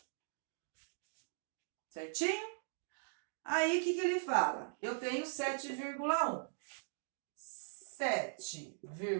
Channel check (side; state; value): left; silent; digital silence